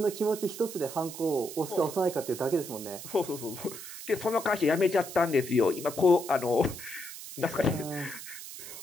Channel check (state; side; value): noise; right; hiss, 11 dB below the sound